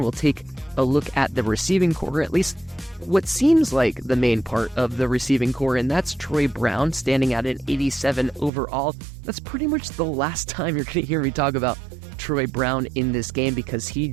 take a look at the receiving core, at least what seems like the main part of the receiving core, and that's Troy Brown, standing at an 87 overall. That's pretty much the last time you're going to hear me talk about Troy Brown in this game, because he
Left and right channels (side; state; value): left; drops out; at 8.5 s